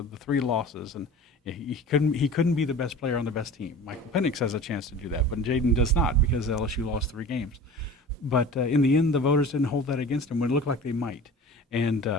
3 losses, and he couldn't be the best player on the best team. Michael Penix has a chance to do that, but Jayden does not, because LSU lost 3 games. But in the end, the voters didn't hold that against him when it looked like they might. And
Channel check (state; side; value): normal; both; correlation 0.39